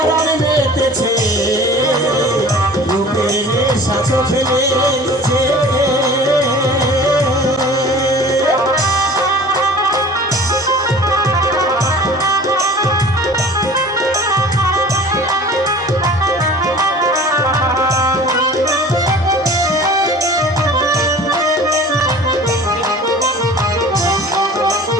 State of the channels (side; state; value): both; normal; correlation 0.44